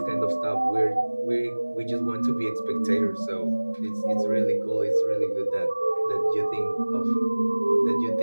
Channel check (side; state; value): both; inverted; correlation -1.00